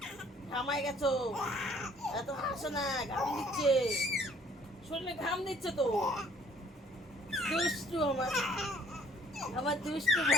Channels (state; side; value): normal; both; correlation 0.59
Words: ঘামাই গেছো, এত হাসো না, ঘাম দিচ্ছে, শরীরে ঘাম দিচ্ছে তো। দুষ্টু আমার, আমার দুষ্টু